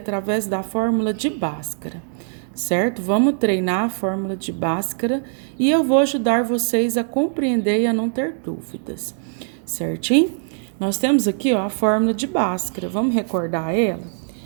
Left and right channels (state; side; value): silent; left; digital silence